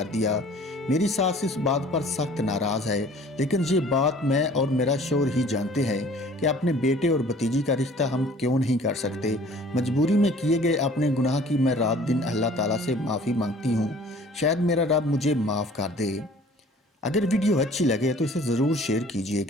दिया। मेरी सास इस बात पर सख्त नाराज है, लेकिन ये बात मैं और मेरा शोहर ही जानते हैं कि अपने बेटे और भतीजी का रिश्ता हम क्यों नहीं कर सकते। मजबूरी में किए गए अपने गुनाह की मैं रात दिन अल्लाह ताला से माफी मांगती हूँ। शायद मेरा रब मुझे माफ कर दे। अगर वीडियो अच्छी लगे तो इसे ज़रूर शेयर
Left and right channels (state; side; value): normal; both; correlation 0.51